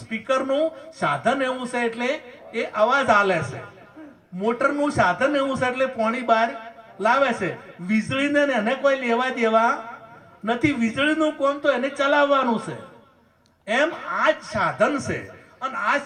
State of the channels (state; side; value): identical; both; correlation 1.00